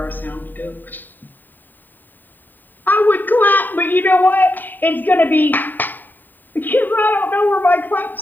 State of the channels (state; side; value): late; right; 0.090 ms